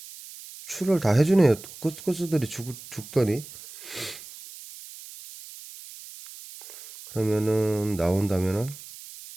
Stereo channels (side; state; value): right; noise; hiss, 16 dB below the sound